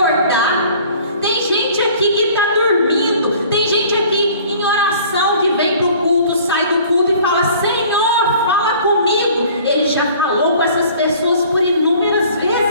Tem gente aqui que está dormindo, tem gente aqui em oração que vem para o culto, sai do culto e fala: Senhor, fala comigo. Ele já falou com essas pessoas por inúmeras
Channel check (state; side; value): inverted; both; correlation -0.50